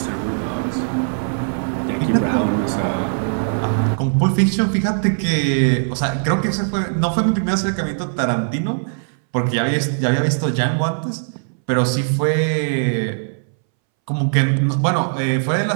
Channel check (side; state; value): left; silent; 64 dB below the other